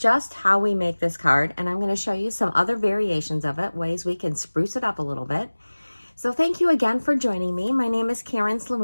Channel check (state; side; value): inverted; both; correlation -1.00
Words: how we make this card, and I'm going to show you some other variations of it, ways we can spruce it up a little bit. So thank you again for joining me. My name is Karen